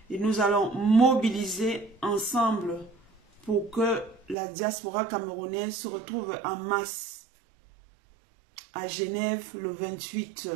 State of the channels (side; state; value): left; drops out; at 4.4 s